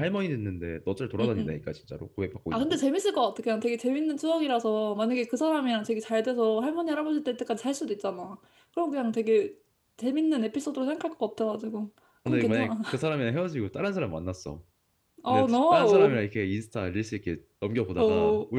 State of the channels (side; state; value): both; identical; correlation 1.00